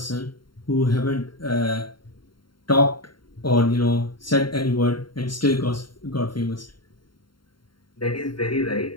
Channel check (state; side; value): late; right; 0.72 ms